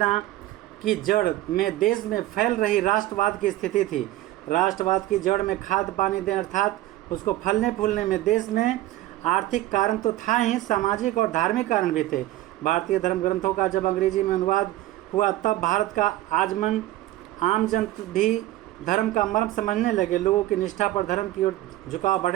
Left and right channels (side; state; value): left; quieter; 15.4 dB